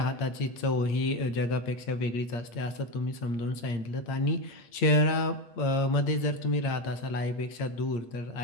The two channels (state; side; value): late; right; 8.6 ms